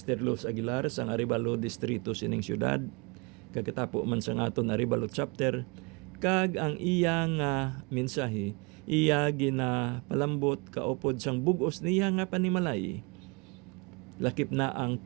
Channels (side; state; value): left; quieter; 29.3 dB